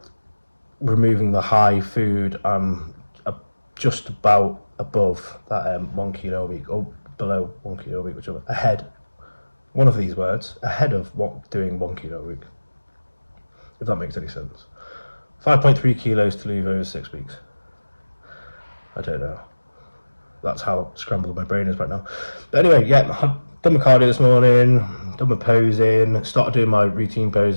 removing the high food, I'm just about above that 1 kilo a week, or below 1 kilo a week, whichever. Ahead, one of these words, ahead of doing 1 kilo a week, if that makes any sense. 5.3 kilos to leave over 6 weeks. I don't know. That's how scrambled my brain is right now. But anyway, yeah, I've done my cardio this morning, done my posing, started doing my routine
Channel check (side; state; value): both; inverted; correlation -1.00